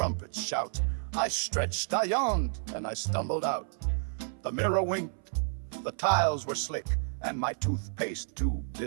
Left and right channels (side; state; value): left; silent; 57 dB below the other